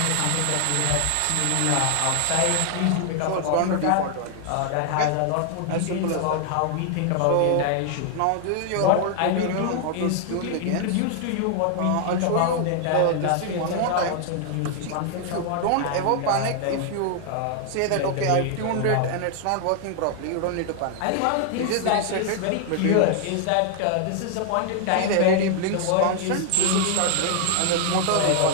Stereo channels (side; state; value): both; different; correlation 0.00